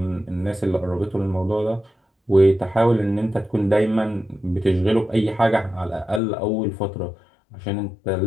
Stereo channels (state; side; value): drops out; right; at 6.2 s